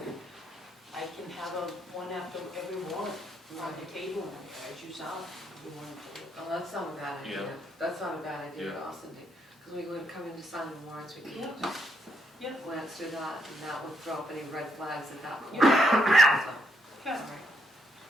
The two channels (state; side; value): normal; both; correlation 0.77